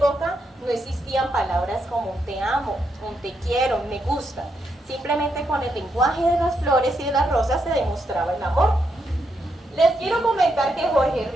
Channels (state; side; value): normal; both; correlation 0.80